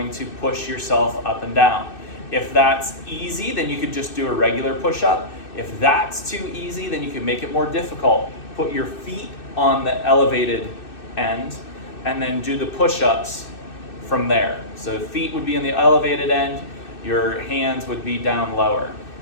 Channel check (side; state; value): right; late; 2.6 ms